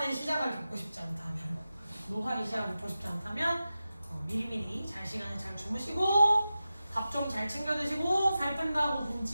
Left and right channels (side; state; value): both; inverted; correlation -0.93